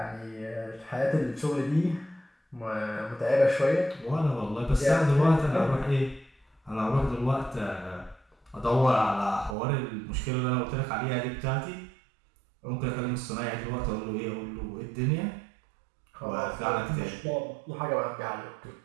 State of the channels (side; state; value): left; drops out; at 9.6 s